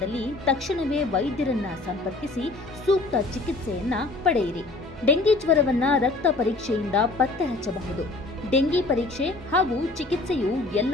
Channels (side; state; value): right; quieter; 3.2 dB